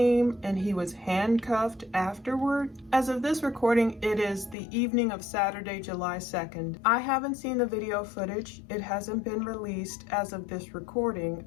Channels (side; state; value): right; drops out; at 4.5 s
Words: and he was handcuffed afterward. As of this recording, it is the evening of Saturday, July 2nd. I haven't seen the video footage. It hasn't been released as of this recording